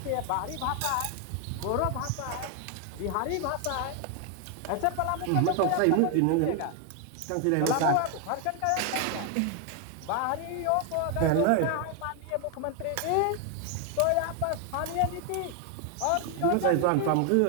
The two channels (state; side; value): different; both; correlation 0.00